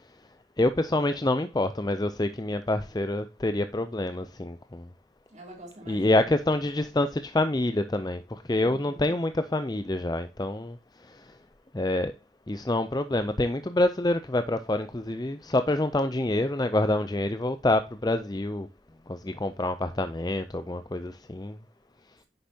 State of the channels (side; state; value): both; normal; correlation 0.71